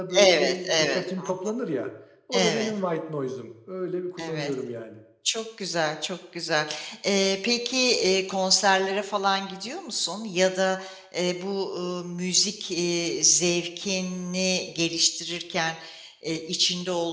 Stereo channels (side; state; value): both; identical; correlation 1.00